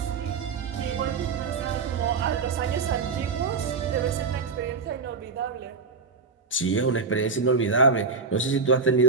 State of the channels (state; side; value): quieter; left; 4.8 dB